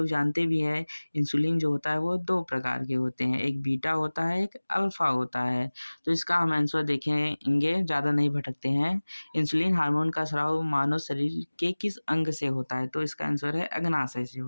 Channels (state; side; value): inverted; both; correlation -1.00